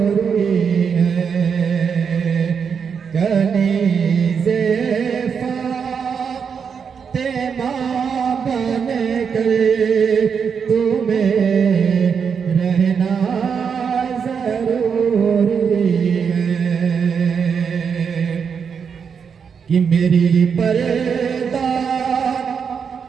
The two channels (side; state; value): left; quieter; 6.5 dB